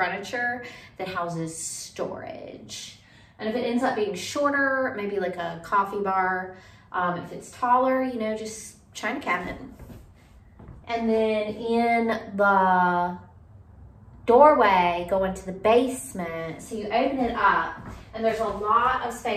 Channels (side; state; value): both; identical; correlation 1.00